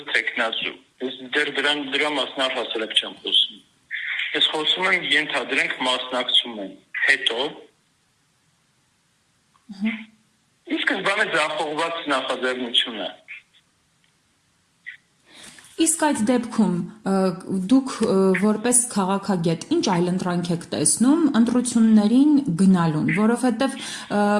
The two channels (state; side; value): identical; both; correlation 1.00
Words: թեկնածու։ Ես դեռ դրա մասին առհասարակ չեմ խոսում։ Ես խոսում եմ ենթադրենք մասնակցում են։ Հետո իսկ բանը ձախողված նախաձեռնություն է։ Իսկ այդ դեպքում դուք որպես քաղաքագետ ինչ այլընտրանք եք տեսնում ընտրություններին գնալուն, որովհետև